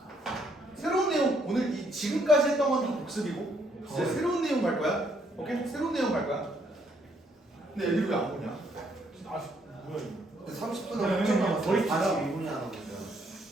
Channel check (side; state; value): both; normal; correlation 0.70